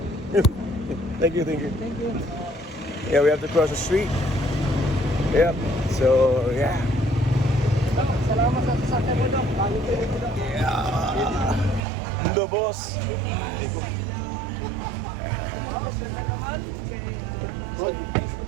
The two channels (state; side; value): drops out; left; at 11.8 s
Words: Thank you, thank you. Thank you. Yeah, we have to cross the street. Yep. So yeah. Salamat sa sasakyan mo daw. Mundo boss. Thank you.